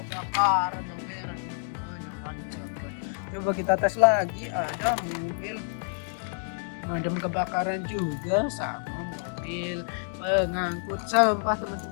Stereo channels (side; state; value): right; silent; 59 dB below the other